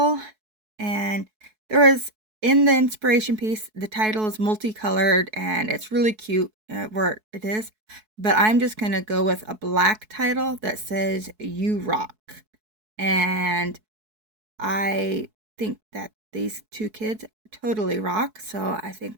And there was, in the inspiration piece, the title is multicolored and it's really cute where it is. But I'm just going to go with a black title that says You Rock. And I think that these 2 kids totally rock, so I think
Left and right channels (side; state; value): left; late; 4.6 ms